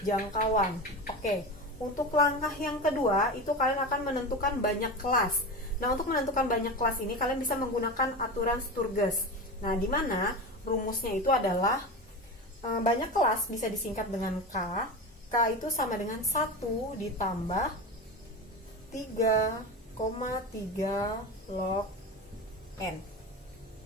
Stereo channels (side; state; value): both; normal; correlation 0.25